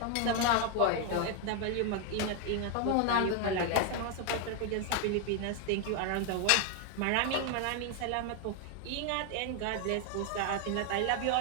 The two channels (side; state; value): both; different; correlation 0.01